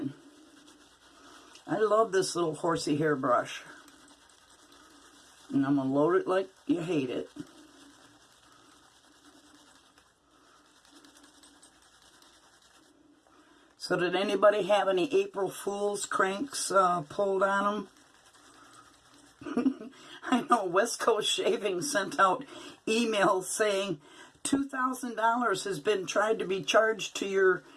I love this little horsey hair brush, and I'm going to load it like you hate it. So did anybody have any April Fool's cranks pulled on them? I know West Coast Shaving sent out emails saying $2,000 has been tried to be charged to your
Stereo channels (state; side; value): identical; both; correlation 1.00